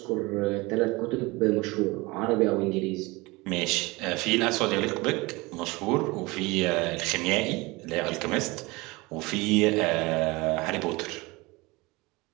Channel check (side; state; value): left; quieter; 23.5 dB